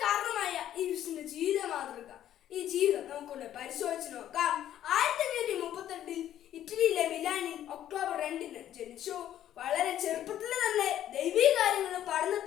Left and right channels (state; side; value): quieter; right; 11.6 dB